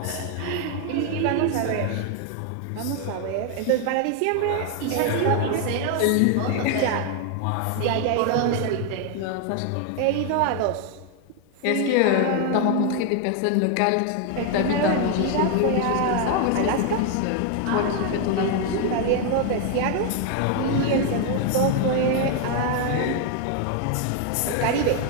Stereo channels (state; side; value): different; both; correlation 0.00